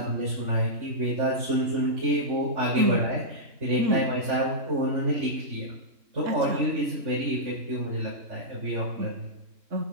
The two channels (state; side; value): late; left; 3.5 ms